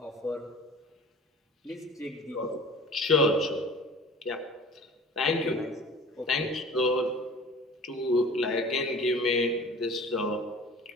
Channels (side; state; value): both; normal; correlation 0.43